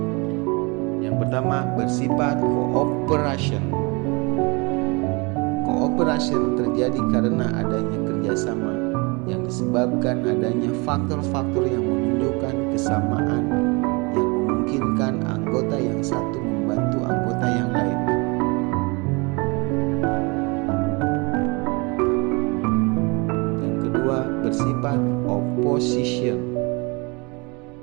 Yang pertama bersifat cooperation. Cooperation terjadi karena adanya kerjasama yang disebabkan adanya faktor-faktor yang menunjukkan kesamaan yang memungkinkan anggota yang satu membantu anggota yang lain. Yang kedua bersifat opposition.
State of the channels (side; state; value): left; quieter; 28.6 dB